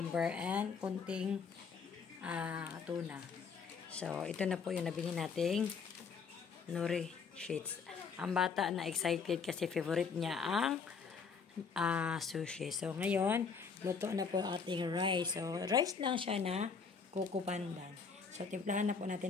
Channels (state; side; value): quieter; right; 5.6 dB